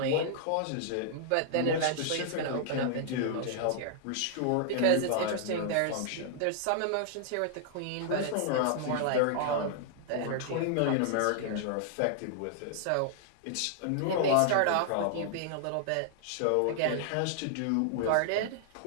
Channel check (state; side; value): different; both; correlation -0.01